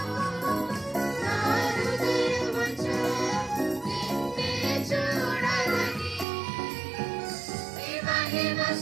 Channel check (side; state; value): left; drops out; at 6.2 s